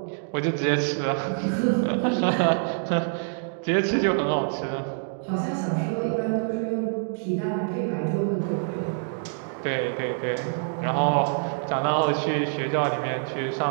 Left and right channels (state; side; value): silent; left; digital silence